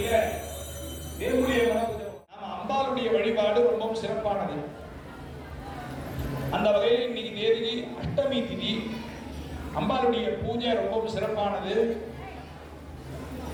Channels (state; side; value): identical; both; correlation 1.00